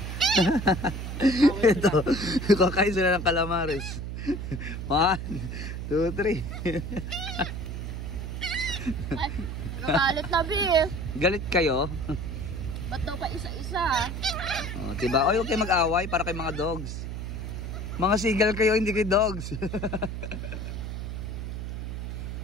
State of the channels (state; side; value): noise; right; hum, 5 dB below the sound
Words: Ito, kakain sila ng calamares. 1, 2, 3. Ay, nagalit na, Bi. Galit kayo? Ba't daw pa isa-isa? Oh, diba? Oy, huwag kayo mag-away para kay mga dogs. Mga sigal kayo, hindi kayo dogs.